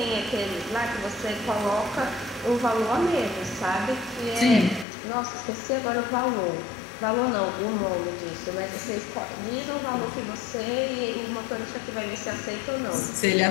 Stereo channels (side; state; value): right; drops out; at 4.9 s